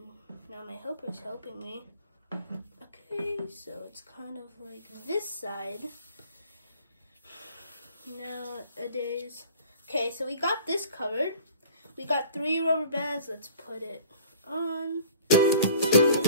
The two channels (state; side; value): inverted; both; correlation -0.47